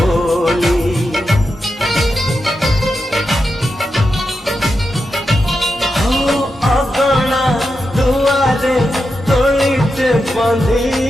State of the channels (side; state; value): both; normal; correlation 0.88